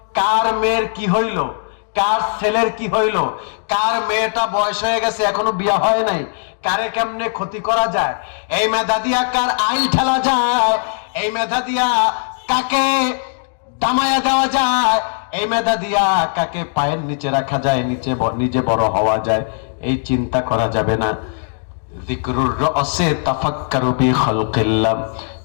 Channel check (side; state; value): right; silent; digital silence